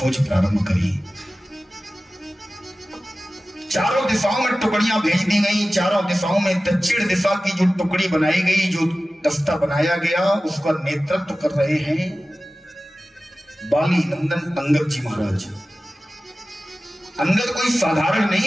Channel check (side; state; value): both; normal; correlation 0.96